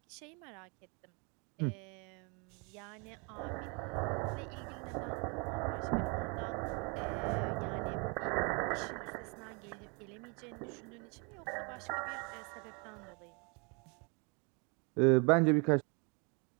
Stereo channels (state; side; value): quieter; left; 32.6 dB